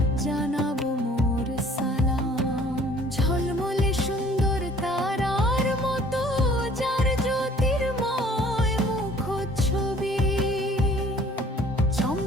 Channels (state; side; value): normal; both; correlation 0.54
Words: জানাবো মোর সালাম। ঝলমলে সুন্দর তারার মতো যার জ্যোতির্ময় মুখচ্ছবি,